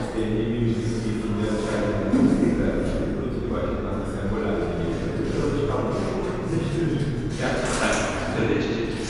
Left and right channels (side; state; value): both; identical; correlation 1.00